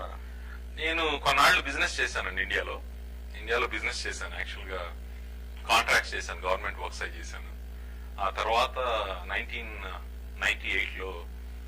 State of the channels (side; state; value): both; identical; correlation 1.00